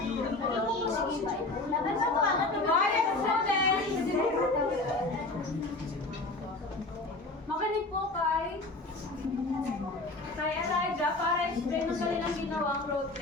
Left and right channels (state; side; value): quieter; right; 3.0 dB